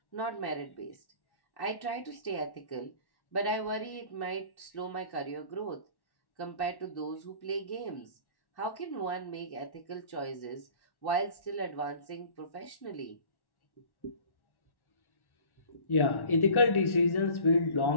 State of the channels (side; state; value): right; late; 1.1 ms